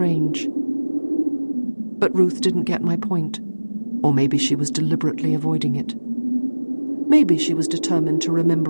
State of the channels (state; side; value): inverted; both; correlation -1.00